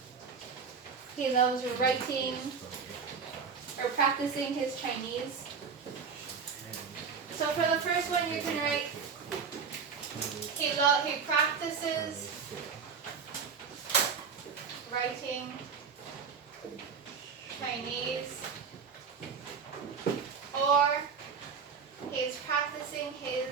He loves writing or practicing his Chinese. So for the first one, you can write, he practices writing Chinese, or he's practicing his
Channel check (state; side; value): quieter; left; 5.9 dB